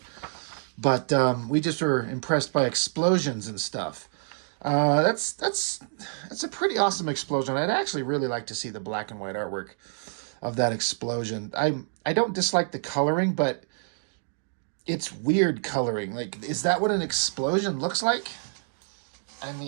But we just were impressed by explosions and stuff. That's a pretty awesome explosion. I'd actually really like to see the black and white artwork of that explosion. I don't dislike the coloring, but it's weird coloring. Like, is that what an explosion looks like? I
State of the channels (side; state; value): left; silent; digital silence